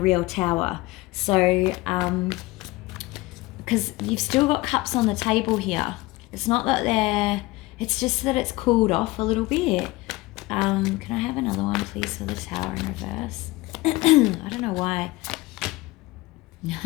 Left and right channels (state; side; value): quieter; right; 20.6 dB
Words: tower. So, because you've still got cups on the table here. It's not that it's just that it's cooled off a little bit. Can I have another one, please, for the Tower in reverse? I don't know why.